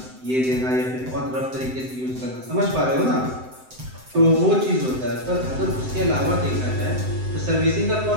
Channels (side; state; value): left; late; 7.8 ms